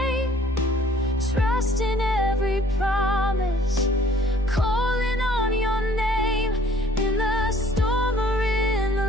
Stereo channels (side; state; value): both; normal; correlation 0.57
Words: trust in every promise, calling on your name. In the storm or in